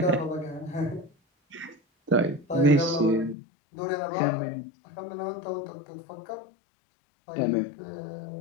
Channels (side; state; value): right; drops out; at 3.4 s